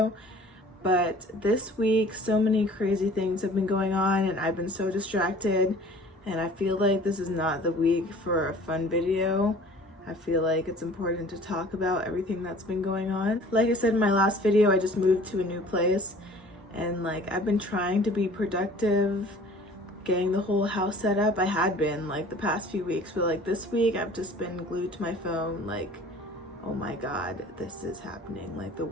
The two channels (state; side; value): normal; both; correlation 0.48